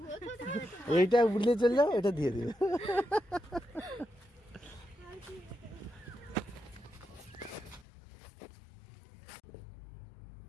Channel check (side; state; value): right; drops out; at 7.9 s